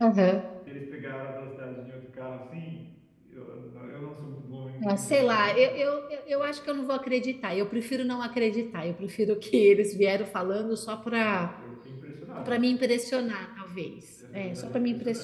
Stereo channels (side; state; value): both; identical; correlation 1.00